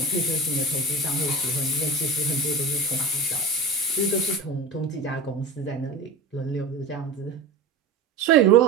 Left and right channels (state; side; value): quieter; left; 3.3 dB